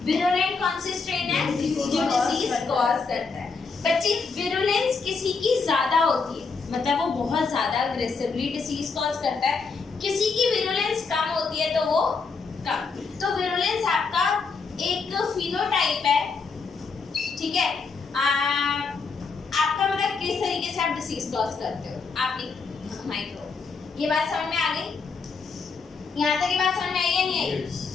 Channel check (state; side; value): quieter; right; 4.8 dB